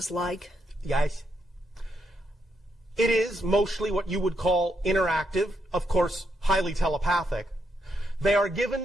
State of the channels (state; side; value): normal; both; correlation 0.79